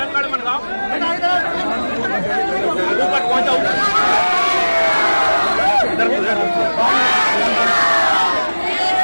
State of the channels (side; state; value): both; inverted; correlation -1.00